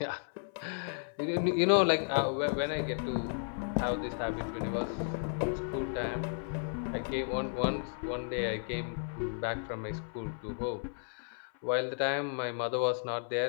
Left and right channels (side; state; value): right; silent; 55 dB below the other